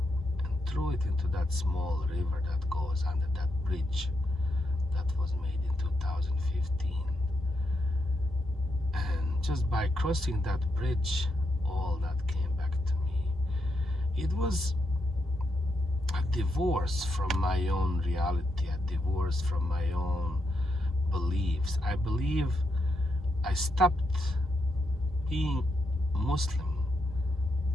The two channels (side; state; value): both; normal; correlation 0.82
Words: and threw it into that small river that goes under that bridge that was made in 2015. And just by crossing that bridge, all that came back to me. It was a divorce from my own reality, a divorce from my own beliefs. I believe I stopped being Muslim